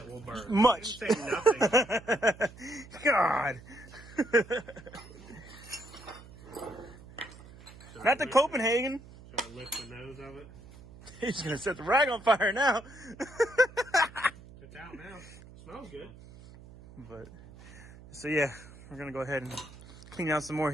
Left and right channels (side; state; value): right; noise; hum, 19 dB below the sound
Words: will burn. Much. He didn't say nothing. God. Not the Copenhagen. Should I lift the nose of it? He's gonna set the rag on fire now. It's out now. Smells good. But so yeah, we're gonna go ahead and clean out some more.